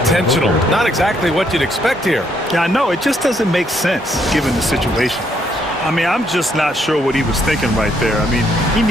Not exactly what you'd expect here. Yeah, I know. It just doesn't make sense given the situation. I mean, I'm just not sure what he was thinking right there. I mean, he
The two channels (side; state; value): both; normal; correlation 0.72